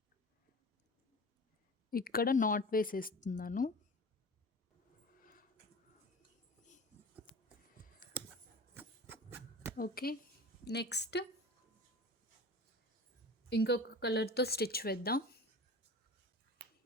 ఇక్కడ నాట్ వేసేస్తున్నాను. ఓకే. నెక్స్ట్ ఇంకొక కలర్‌తో స్టిచ్ వేద్దాం.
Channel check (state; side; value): normal; both; correlation 0.36